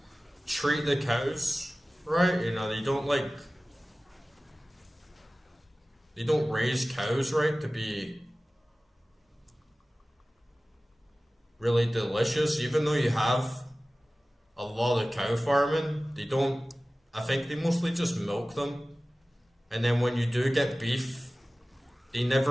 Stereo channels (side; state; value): both; normal; correlation 0.97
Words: treat the cows right. They don't raise cows right to be really delicious. Even though you have a lot of cow farming, they don't. I think they mostly just milk them, and then when you do get beef, they